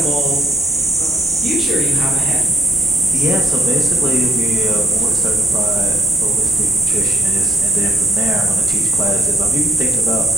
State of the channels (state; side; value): normal; both; correlation 0.70